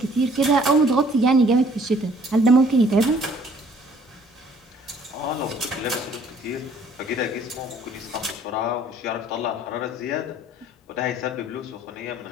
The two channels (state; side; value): normal; both; correlation 0.58